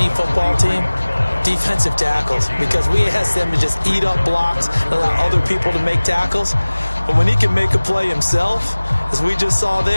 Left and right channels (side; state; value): both; inverted; correlation -1.00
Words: football team Defensive tackles, because we asked them to just eat up blocks and allow other people to make tackles. But when he can make a play himself, as we just saw